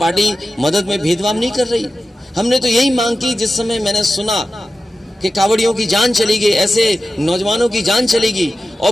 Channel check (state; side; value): normal; both; correlation 0.92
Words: मदद में भेदभाव नहीं कर रही? हमने तो यही मांग की जिस समय मैंने सुना कि कांवड़ियों की जान चली गई, ऐसे नौजवानों की जान चली गई और